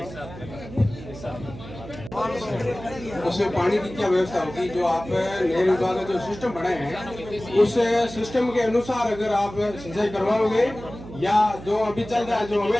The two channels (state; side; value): noise; right; hum, 14 dB below the sound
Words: उसमें पानी की क्या व्यवस्था होगी? जो आप नहर विभाग का जो सिस्टम बनाए हैं, उस सिस्टम के अनुसार अगर आप सिंचाई करवाओगे या जो अभी चल रहा है जो